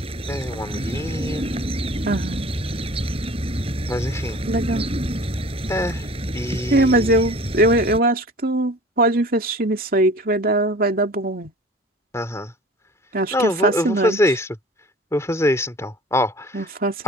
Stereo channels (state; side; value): normal; both; correlation 0.43